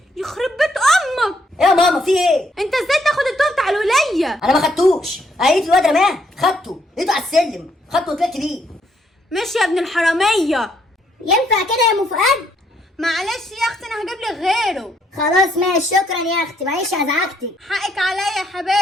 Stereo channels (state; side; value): normal; both; correlation 0.72